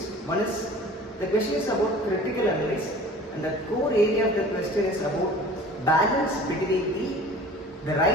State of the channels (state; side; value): normal; both; correlation 0.44